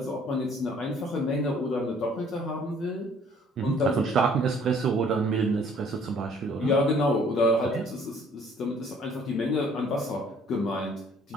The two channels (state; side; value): normal; both; correlation 0.58